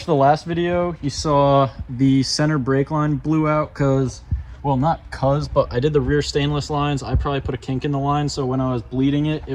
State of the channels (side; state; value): both; identical; correlation 1.00